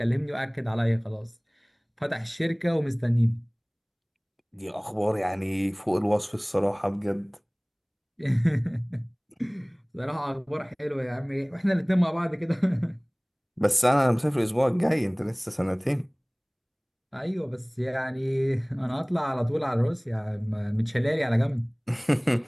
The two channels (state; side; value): identical; both; correlation 1.00